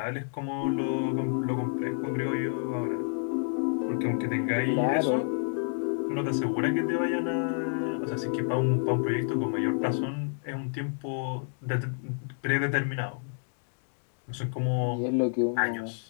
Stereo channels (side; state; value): right; silent; 58 dB below the other